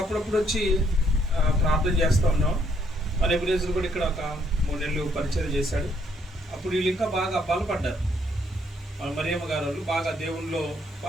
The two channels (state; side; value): normal; both; correlation 0.70